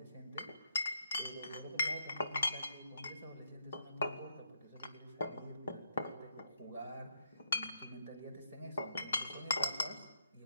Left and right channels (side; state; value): both; inverted; correlation -0.77